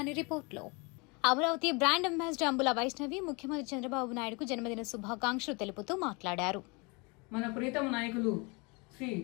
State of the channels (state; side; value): quieter; right; 29.2 dB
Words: రిపోర్ట్లో. అమరావతి బ్రాండ్ అంబాసిడర్ అంబుల వైష్ణవి ముఖ్యమంత్రి చంద్రబాబు నాయుడుకు జన్మదిన శుభాకాంక్షలు తెలుపుతూ మాట్లాడారు. మన ప్రీతమ నాయకులు శ్రీ